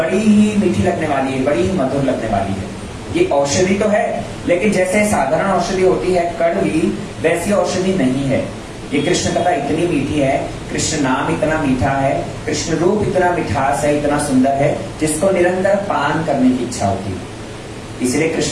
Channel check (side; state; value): both; identical; correlation 1.00